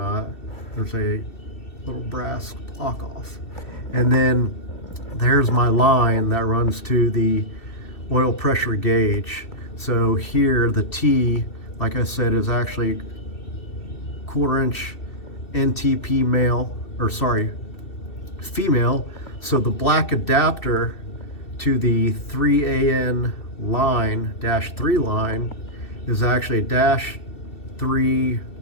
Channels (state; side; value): late; right; 2.6 ms